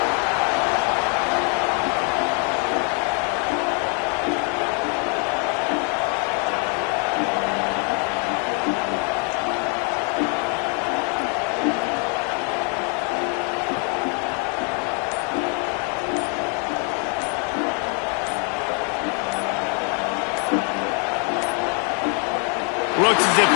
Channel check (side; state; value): right; quieter; 38.0 dB